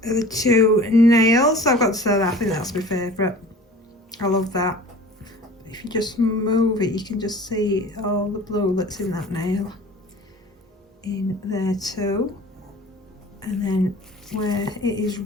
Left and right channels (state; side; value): normal; both; correlation 0.43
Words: are the two nails. I've got to say that I think that's my favourite. I love that. If you just move it, you can just see all the blue that's in that nail in there too. And then where it is